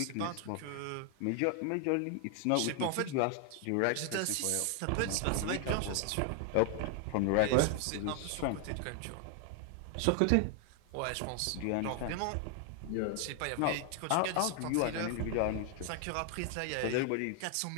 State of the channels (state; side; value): different; both; correlation 0.00